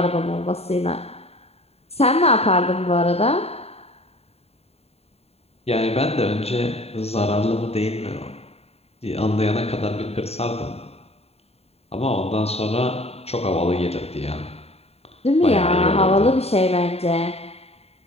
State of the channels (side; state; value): right; late; 0.30 ms